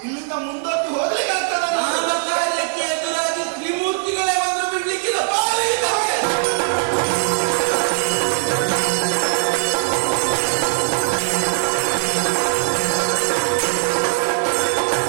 ಇಲ್ಲಿಂದ ಮುಂದಕ್ಕೆ ಹೋಗಲಿ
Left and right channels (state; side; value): silent; left; digital silence